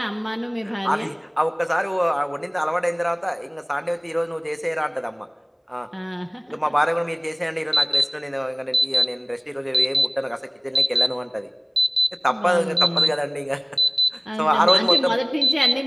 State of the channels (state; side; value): identical; both; correlation 1.00